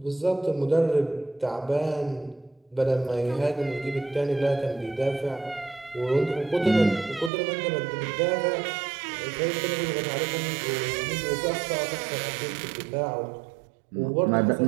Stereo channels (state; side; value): drops out; left; at 7.3 s